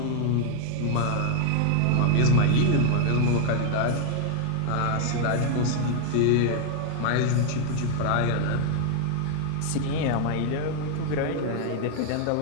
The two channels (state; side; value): different; both; correlation 0.00